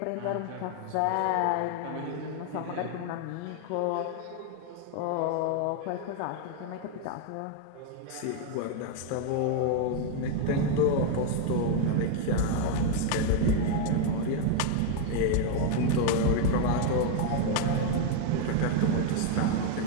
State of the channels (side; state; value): both; different; correlation 0.01